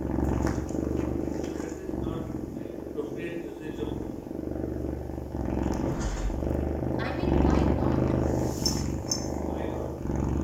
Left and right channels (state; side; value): identical; both; correlation 1.00